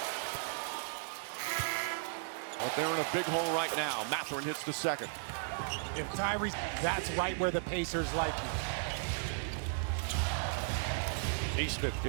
But they're in a big hole right now. Mathurin hits the second. If Tyrese, that's right where the Pacers like you. Neesmith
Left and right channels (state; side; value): silent; left; digital silence